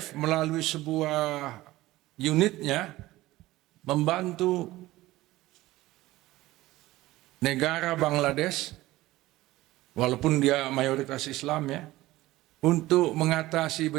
melalui sebuah unitnya membantu negara Bangladesh, walaupun dia mayoritas Islam ya, untuk mengatasi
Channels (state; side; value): quieter; left; 17.4 dB